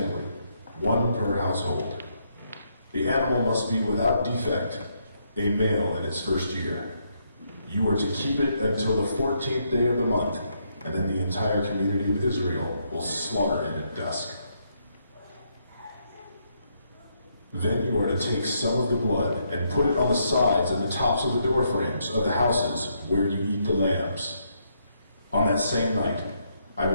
one per household. The animal must be without defect, a male in its first year. You are to keep it until the 14th day of the month, and then the entire community of Israel will slaughter it at dusk. Then you are to take some of the blood and put it on the sides and the tops of the door frames of the houses where you eat the lambs. On that same night, I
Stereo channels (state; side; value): inverted; both; correlation -0.76